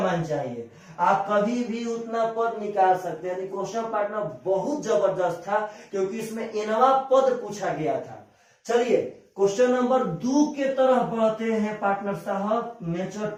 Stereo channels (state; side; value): identical; both; correlation 1.00